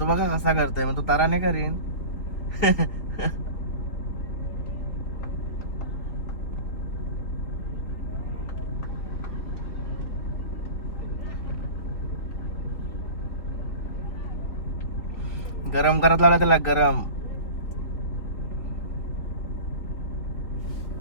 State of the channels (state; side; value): late; right; 3.8 ms